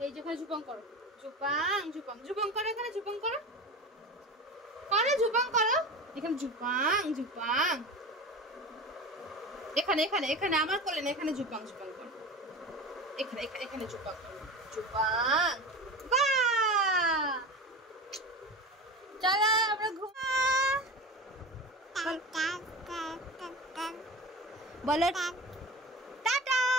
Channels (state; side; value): normal; both; correlation 0.30